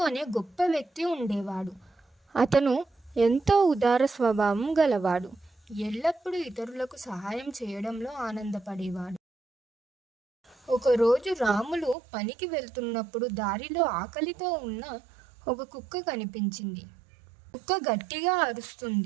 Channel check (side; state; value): left; drops out; at 12.0 s